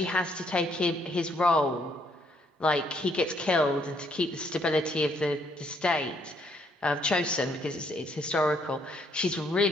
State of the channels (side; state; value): both; normal; correlation 0.70